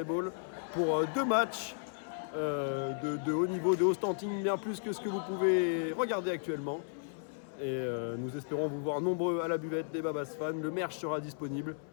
pour 2 matchs de haut niveau, de haut standing, bien plus que ce que vous pouvez regarder actuellement. Et nous espérons vous voir nombreux à la buvette des Babas Fans. Le merch sera disponible.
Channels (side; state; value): right; silent; 55 dB below the other